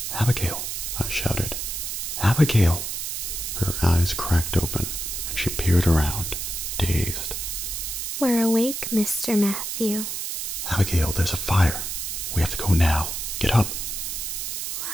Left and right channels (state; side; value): noise; right; hiss, 4 dB below the sound